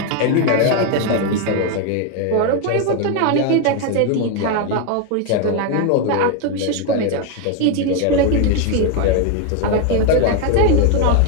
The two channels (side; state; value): both; different; correlation 0.01